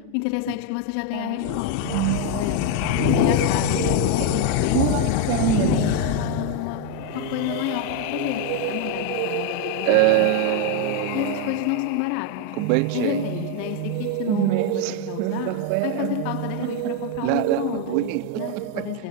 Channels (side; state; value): both; different; correlation 0.01